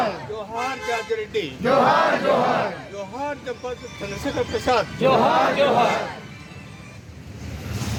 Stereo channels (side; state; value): both; identical; correlation 1.00